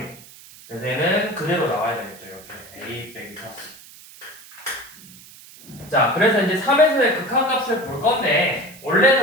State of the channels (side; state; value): right; noise; hiss, 20 dB below the sound